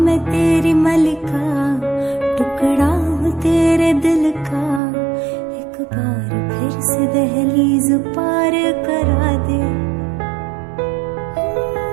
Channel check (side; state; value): left; drops out; at 4.8 s